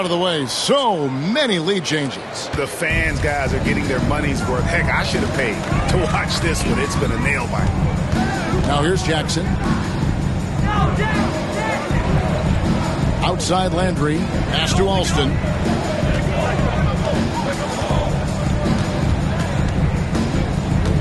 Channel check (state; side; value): identical; both; correlation 1.00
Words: of the way. So many lead changes. The fans, guys, are getting their money's worth. Heck, I should have paid to watch this one. It's been a nail biter. Now here's Jackson. Outside Landry. Pass to Alston.